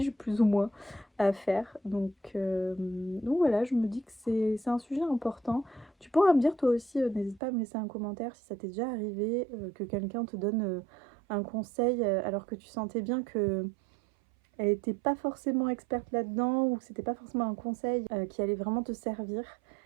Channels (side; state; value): left; drops out; at 7.4 s